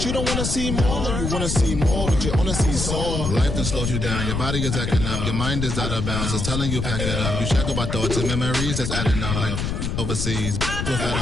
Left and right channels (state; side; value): noise; left; rumble, 2 dB below the sound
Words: you don't wanna see more. You wanna see more, but you wanna see soar. Life done slowed you down. Your body is acting up. Your mind is out of bounds. It's telling you pack it up. You shackle by thoughts and memories that's adding up. Like overseas,